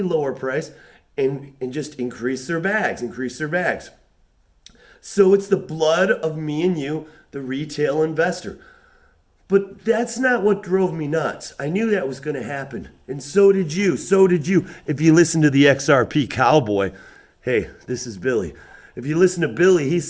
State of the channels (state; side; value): identical; both; correlation 1.00